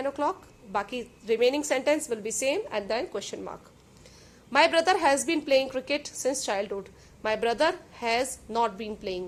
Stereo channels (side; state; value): both; identical; correlation 1.00